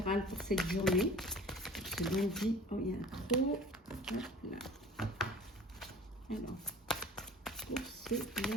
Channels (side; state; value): both; normal; correlation 0.45